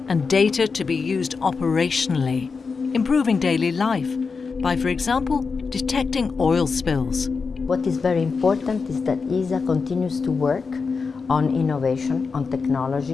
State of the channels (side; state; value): right; quieter; 4.9 dB